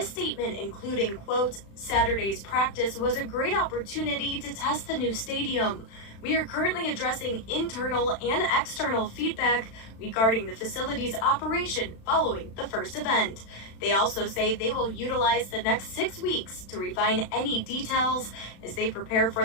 statement, including, quote, Saturday's practice was a great opportunity to test the new stadium. We are currently addressing internal and external feedback regarding the facility's operation following the first event. They also say they will utilize the next 6 weeks to refine any details as they prepare for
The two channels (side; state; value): right; late; 36 ms